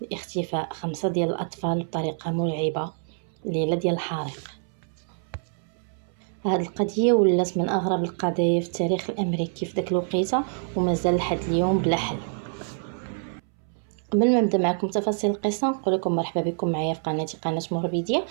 لاختفاء 5 ديال الأطفال بطريقة مرعبة ليلة ديال الحريق. هاد القضية ولات من أغرب القضايا في التاريخ الأمريكي في داك الوقيته، ومازال لحد اليوم بلا حل. قبل ما نبدا معكم تفاصيل القصه نقول لكم مرحبا بكم معايا في قناتي قناه موربيديا.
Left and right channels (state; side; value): silent; left; 61 dB below the other